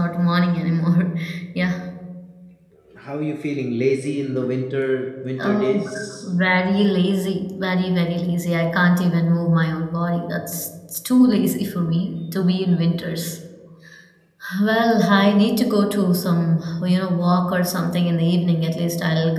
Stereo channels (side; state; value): both; identical; correlation 1.00